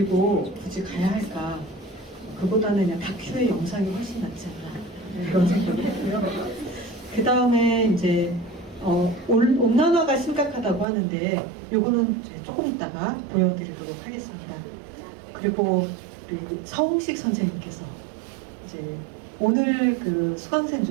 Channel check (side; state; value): left; drops out; at 10.9 s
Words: 굳이 가야 할까? 그보다는 그냥 다큐의 영상이 훨씬 낫지 않나 그런 생각을 했고요. 그 다음에 이제 온난화가 심각하다고 하는데 요거는 조금 이따가 보여드리도록 하겠습니다. 그리고 우리 서홍식 선생님께서 이제 오늘 그 수강생